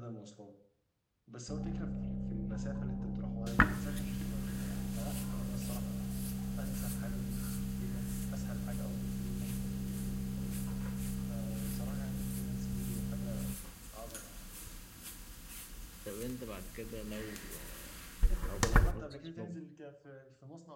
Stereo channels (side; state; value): both; identical; correlation 1.00